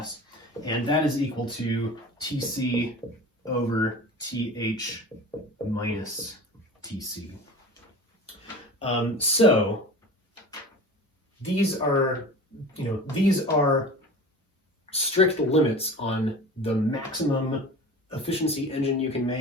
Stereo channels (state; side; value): normal; both; correlation 0.36